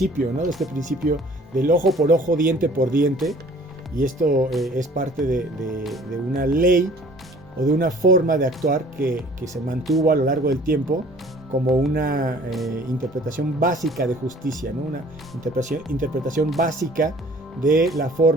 ¿no? De este principio del ojo por ojo, diente por diente, y esto es parte de una ley o de una forma de actuar que se mantuvo a lo largo del tiempo como una interpretación básica de justicia, ¿no? Una interpretación básica de la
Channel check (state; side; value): normal; both; correlation 0.52